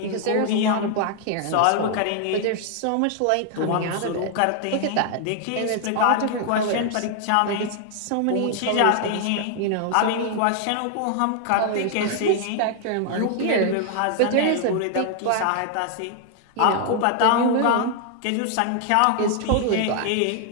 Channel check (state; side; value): different; both; correlation 0.00